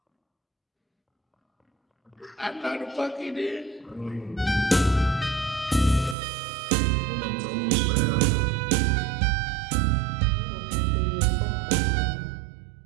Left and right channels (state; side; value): drops out; left; at 6.2 s